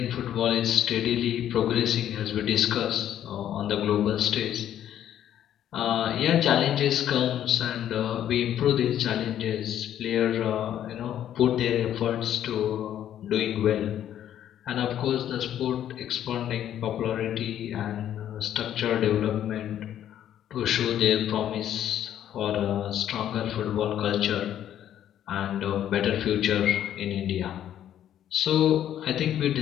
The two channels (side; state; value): right; quieter; 10.8 dB